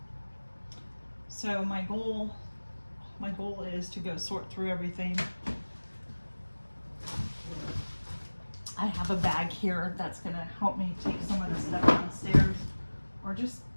So my goal is to go sort through everything. I have a bag here that's gonna help me take some of the stuff downstairs, or just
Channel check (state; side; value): inverted; both; correlation -1.00